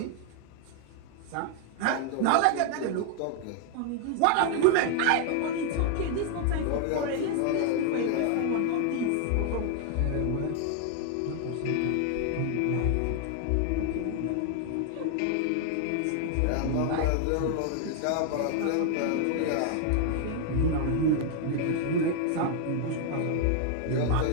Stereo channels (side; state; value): both; different; correlation 0.00